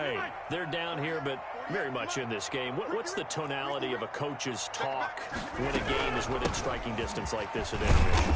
They're down here, but very much in this game. What's the tonality of a coach's talk when a game is within striking distance like this at intermission?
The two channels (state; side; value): identical; both; correlation 1.00